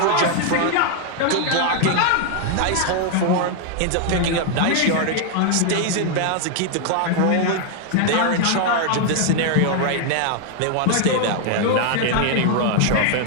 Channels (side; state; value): both; different; correlation 0.00